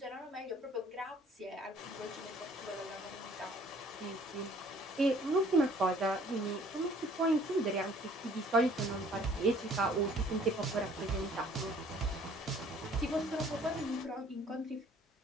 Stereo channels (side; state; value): both; normal; correlation 0.57